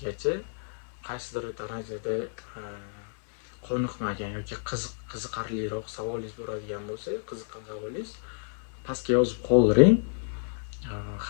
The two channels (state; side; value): silent; right; 58 dB below the other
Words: Qaysidir darajada qoniqmagan yoki qiziqarliroq savolingiz bo'ladigan bo'lsa, qiziqqan savolingiz pastga yozib qoldiring.